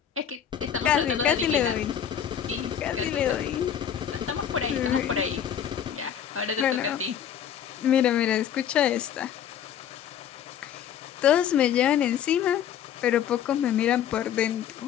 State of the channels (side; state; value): right; quieter; 9.2 dB